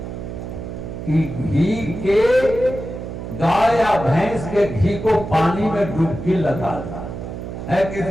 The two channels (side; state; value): right; noise; hum, 8 dB below the sound